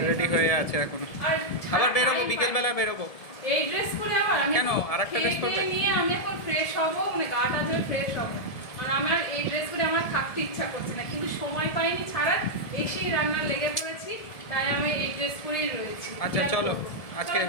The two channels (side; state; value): right; late; 1.7 ms